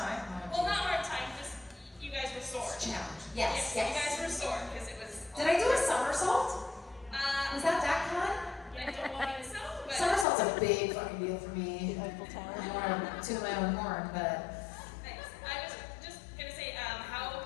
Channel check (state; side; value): drops out; right; at 10.2 s